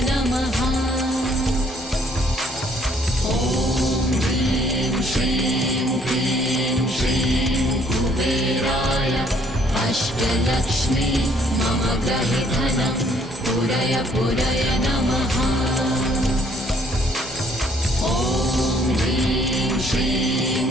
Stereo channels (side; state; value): both; normal; correlation 0.64